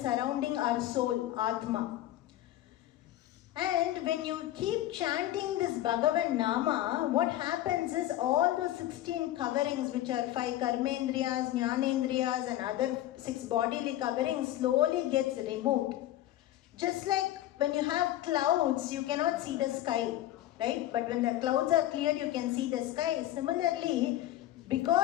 our soul, Atma. And when you keep chanting this Bhagavan Nama, what happens is all those 16 coverings, which are 5 karmendriyas, jnanendriyas and other 6 bodily coverings, slowly gets removed. Just like when you have clouds, you cannot see the sky, right? But when the clouds are cleared, you can see the sky. Similarly,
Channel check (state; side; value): quieter; right; 14.0 dB